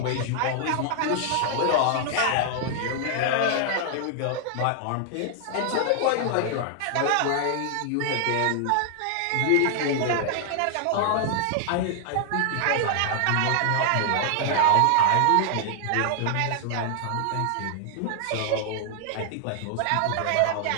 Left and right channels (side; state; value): both; different; correlation 0.00